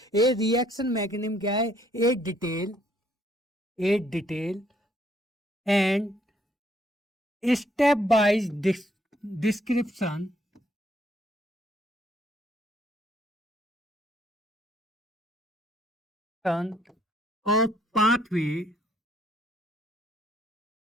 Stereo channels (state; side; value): normal; both; correlation 0.67